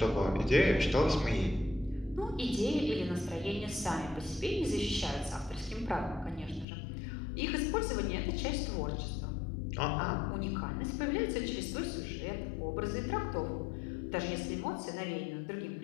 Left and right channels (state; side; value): drops out; right; at 6.7 s